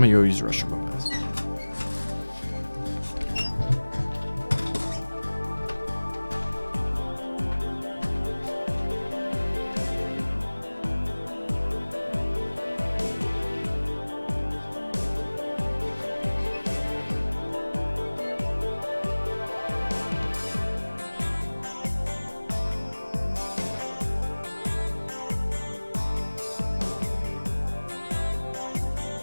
go use the restroom real fast.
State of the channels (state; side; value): inverted; both; correlation -1.00